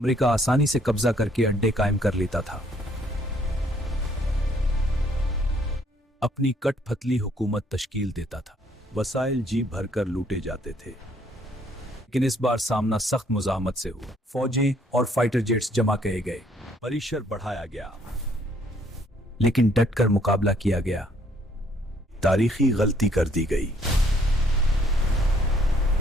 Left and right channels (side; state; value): both; normal; correlation 0.65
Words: आसानी से कब्जा करके अड्डे कायम कर लेता था, अपनी कठपुतली हुकूमत तश्कील देता था। वसाइल जी भरकर लूटे जाते थे, लेकिन इस बार सामना सख्त मुजाहमत से हुआ। फौजें और फाइटर जेट्स जमा किए गए, परिसर बढ़ाया गया, लेकिन डटकर मुकाबला किया गया। तारीखी गलती कर दी गई,